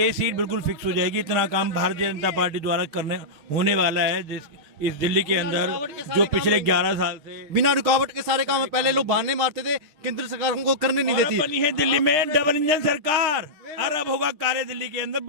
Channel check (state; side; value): late; left; 6.5 ms